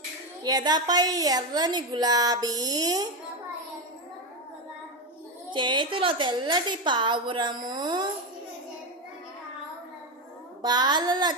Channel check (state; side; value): normal; both; correlation 0.11